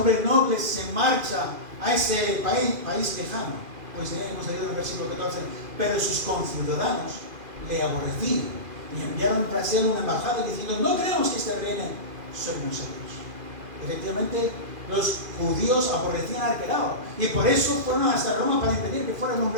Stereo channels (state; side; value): late; left; 2.5 ms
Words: noble se marcha a ese país lejano? Pues hemos leído en el versículo 14, pero sus conciudadanos le aborrecían y enviaron tras él una embajada diciendo: no queremos que este reine sobre nosotros. Efectivamente, los judíos aborrecían al Arquelao y por eso fueron hasta Roma para impedir que fuera